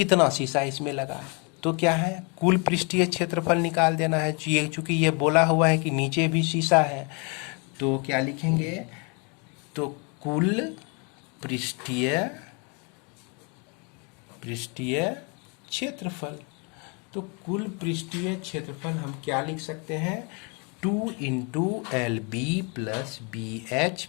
शीशा इसमें लगा। तो क्या है, कुल पृष्ठीय क्षेत्रफल निकाल देना है। चूँकि ये बोला हुआ है कि नीचे भी शीशा है, तो क्या लिखेंगे, तो कुल पृष्ठीय क्षेत्रफल। तो कुल पृष्ठीय क्षेत्रफल हम क्या लिख सकते हैं, 2 into LB plus BH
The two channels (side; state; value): right; quieter; 33.6 dB